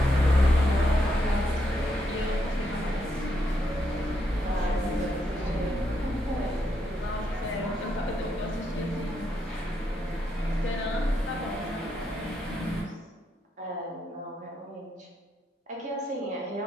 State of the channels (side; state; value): both; normal; correlation 0.79